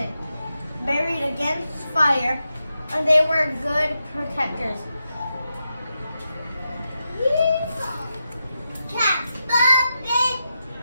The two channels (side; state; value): both; inverted; correlation -0.87